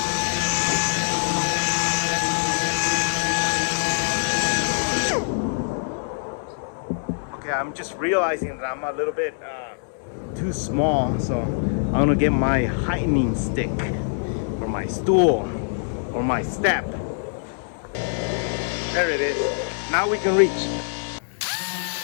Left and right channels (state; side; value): silent; right; 63 dB below the other